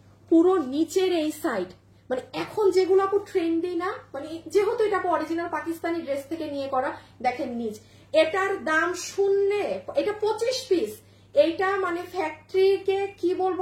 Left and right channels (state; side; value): identical; both; correlation 1.00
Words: পুরো নিচের এই সাইড, মানে এখন যেগুলো আপু ট্রেন্ডি না, মানে যেহেতু এটা অরিজিনাল পাকিস্তানি ড্রেস থেকে নিয়ে করা। দেখেন নিচ, এটার দাম শুনলে, এটা 25 পিস, এইটা মানে ফ্যাক্টরিকে কি বলবো